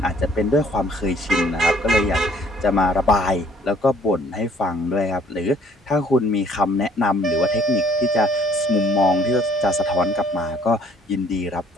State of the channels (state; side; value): normal; both; correlation 0.60